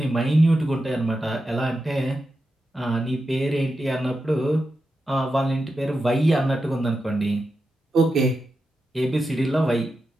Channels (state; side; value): normal; both; correlation 0.89